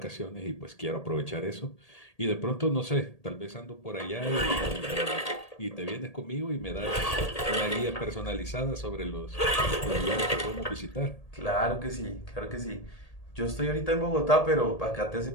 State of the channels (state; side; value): late; right; 1.8 ms